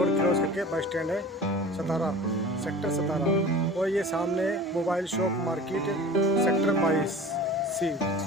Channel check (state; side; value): normal; both; correlation 0.39